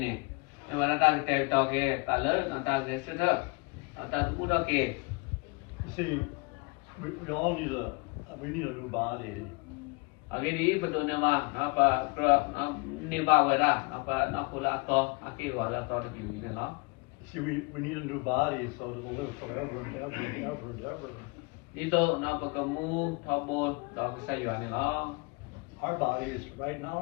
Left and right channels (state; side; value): quieter; right; 29.6 dB